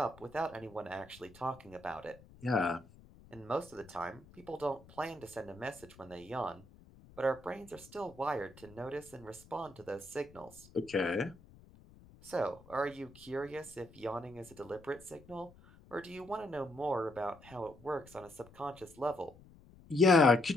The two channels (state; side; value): noise; left; rumble, 22 dB below the sound